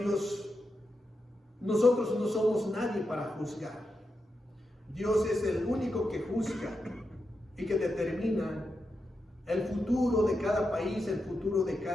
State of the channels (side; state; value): both; normal; correlation 0.87